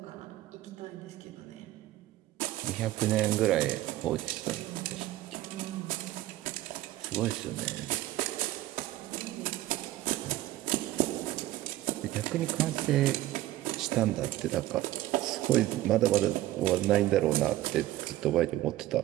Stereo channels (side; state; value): left; quieter; 15.6 dB